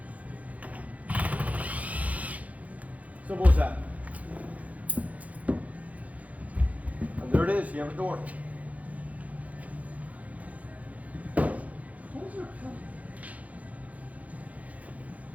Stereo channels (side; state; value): left; late; 0.070 ms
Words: Simple as that. And there it is, you have a door.